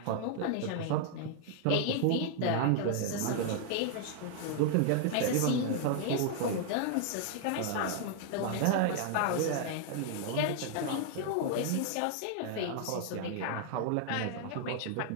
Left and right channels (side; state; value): both; different; correlation 0.00